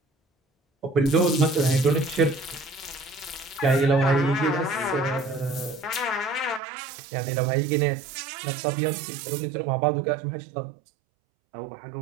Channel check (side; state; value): left; drops out; at 6.6 s